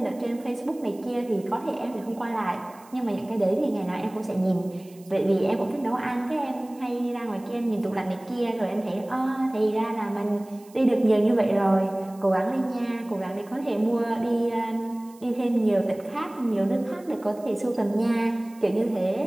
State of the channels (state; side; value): noise; right; hiss, 26 dB below the sound